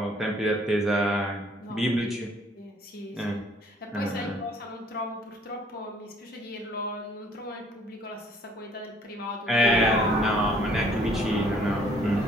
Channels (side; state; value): both; normal; correlation 0.60